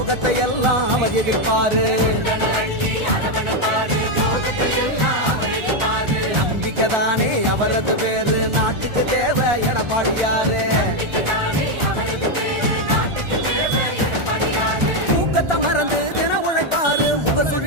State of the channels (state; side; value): late; left; 1.4 ms